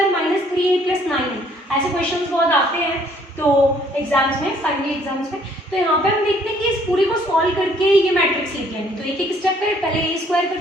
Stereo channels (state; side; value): normal; both; correlation 0.62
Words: 3a + 9। ऐसे क्वेश्चंस बहुत आते हैं तो एग्जाम्स में, फाइनली एग्जाम्स में। तो यहाँ पे हम देखते हैं कि इस पूरी को सॉल्व करके ये मैट्रिक्स लिख लेंगे। तो एक एक स्टेप करें, पहले a²